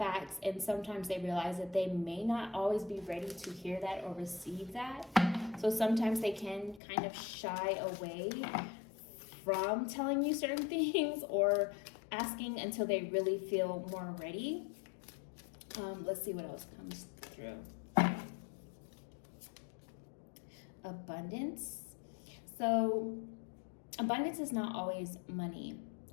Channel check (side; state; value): right; drops out; at 6.8 s